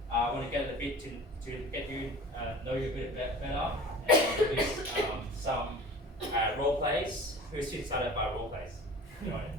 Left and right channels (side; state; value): both; normal; correlation 0.41